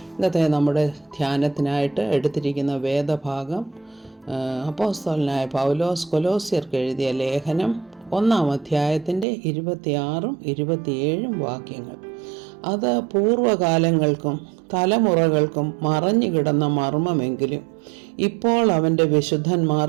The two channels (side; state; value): left; drops out; at 9.2 s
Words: ഇന്നത്തെ നമ്മുടെ ധ്യാനത്തിനായിട്ട് എടുത്തിരിക്കുന്ന വേദഭാഗം അപ്പോസ്തലനായ പൗലോസ് കൊലോസ്യർക്ക് എഴുതിയ ലേഖനം 1-ാം അധ്യായത്തിൻ്റെ 26-ഉം 27-ഉം വാക്യങ്ങൾ. അത് പൂർവ്വകാലങ്ങൾക്കും തലമുറകൾക്കും മറഞ്ഞുകിടന്ന മർമ്മമെങ്കിലും ഇപ്പോൾ അവൻ്റെ